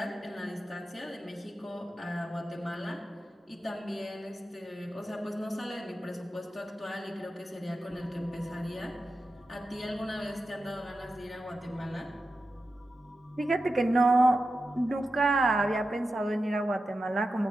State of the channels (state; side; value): normal; both; correlation 0.91